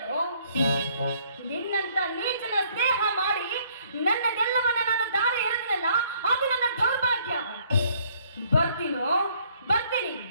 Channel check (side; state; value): both; inverted; correlation -0.64